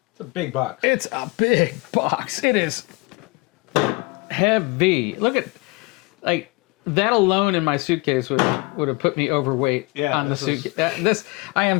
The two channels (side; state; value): right; quieter; 25.1 dB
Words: It's a big box. It's a big box. It is heavy. Look at, like, that alone in my suitcase would have put me overweight on the suitcase. I